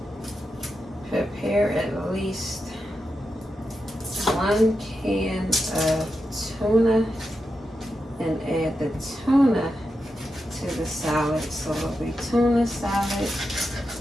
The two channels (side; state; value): both; normal; correlation 0.88